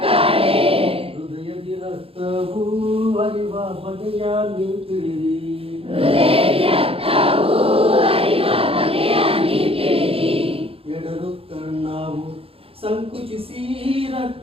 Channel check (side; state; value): left; late; 0.27 ms